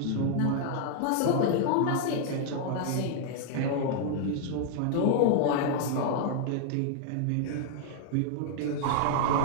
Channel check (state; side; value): different; both; correlation -0.01